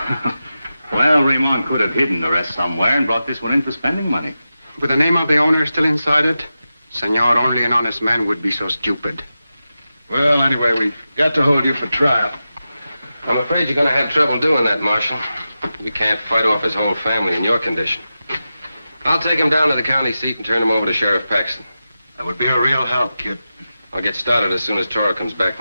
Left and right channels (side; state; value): both; inverted; correlation -0.92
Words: Well, Ramon could have hidden the rest somewhere and brought this one in for spending money. With the name of the owner still inside it, senor, only an honest man would be so stupid. Well, anyway, we've got to hold you for trial. I'm afraid you're going to have trouble doing that, Marshal. We can't fight off his whole family in your condition. I'll take him down to the county seat and turn him over to Sheriff Paxton. That would be a real help, Kid. I'll get started as soon as Toro comes back